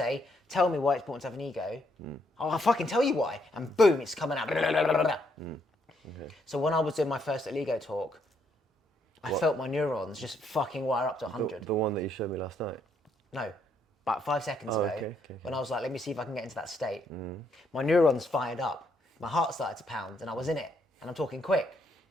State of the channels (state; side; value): normal; both; correlation 0.73